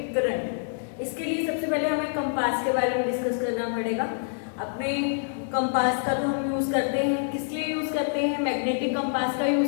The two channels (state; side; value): silent; right; digital silence